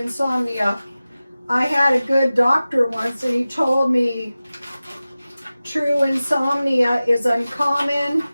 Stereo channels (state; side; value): inverted; both; correlation -0.96